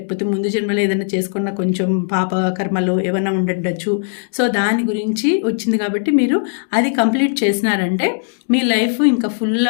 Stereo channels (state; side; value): silent; right; digital silence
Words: ముందు జన్మలో ఏదైనా చేసుకున్న కొంచెం పాప కర్మలు ఏమైనా ఉండుండొచ్చు. సో దాని గురించి వచ్చింది కాబట్టి మీరు అది కంప్లీట్ చేసినారంటే మీ లైఫ్ ఇంకా ఫుల్